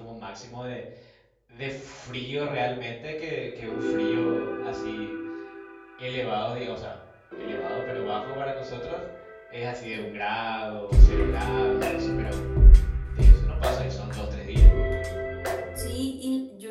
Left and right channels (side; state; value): both; identical; correlation 1.00